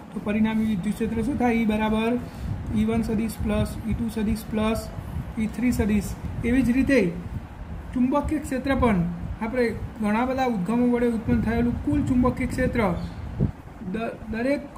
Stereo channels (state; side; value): identical; both; correlation 1.00